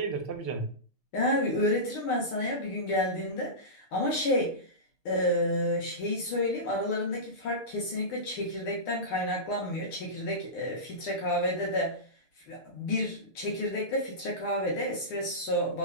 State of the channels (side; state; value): right; late; 6.6 ms